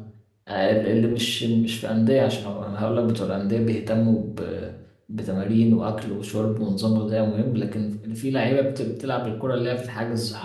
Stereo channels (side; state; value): both; identical; correlation 1.00